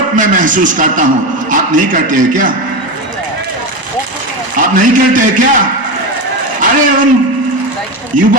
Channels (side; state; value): left; late; 1.0 ms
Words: मैं महसूस करता हूं। आप नहीं करते हैं क्या? आप नहीं करते हैं क्या? अरे उन